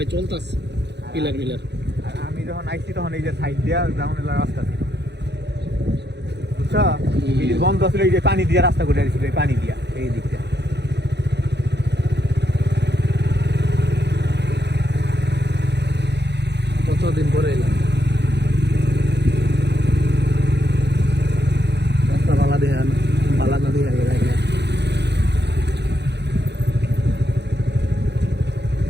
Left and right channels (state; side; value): late; left; 0.50 ms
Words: চলতেছে পিলার মিলার। আর আমি যখন আইছি তখন এই যে সাইড দিয়া ডাউন এলাকার রাস্তা ছিল বুঝছো, ব্রিজ বন্ধ ছিল, এই যে পানি দিয়া রাস্তা করে দিয়েছিল, এই পানি দিয়া এই দিকটা। কতদিন পরে এলাম রাস্তা বালা দিয়ে বালা না দিয়ে গেল।